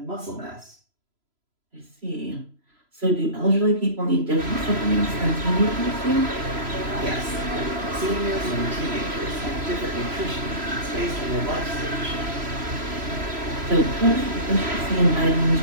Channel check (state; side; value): late; left; 3.0 ms